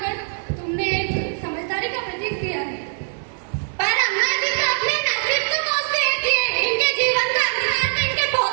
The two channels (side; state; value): left; silent; 64 dB below the other